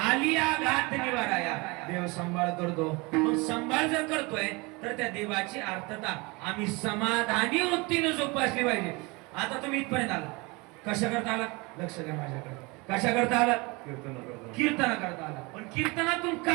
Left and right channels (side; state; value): left; quieter; 26.3 dB